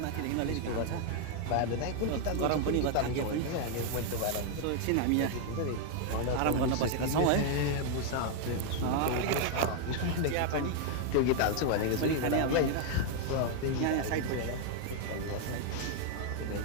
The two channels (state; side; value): different; both; correlation 0.00